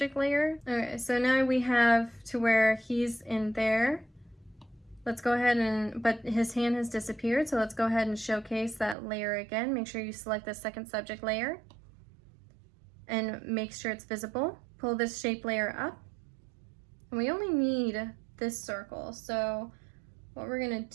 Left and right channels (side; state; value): left; drops out; at 9.0 s